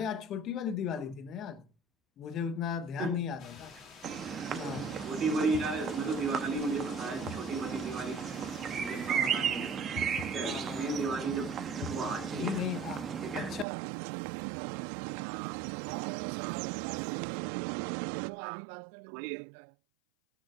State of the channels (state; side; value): drops out; left; at 13.7 s